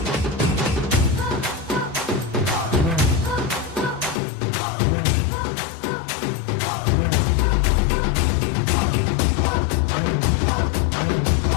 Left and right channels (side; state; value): right; drops out; at 4.2 s